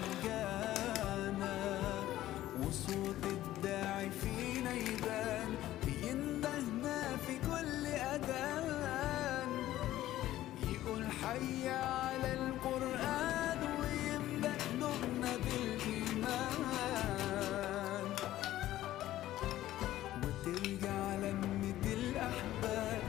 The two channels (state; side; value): quieter; right; 14.4 dB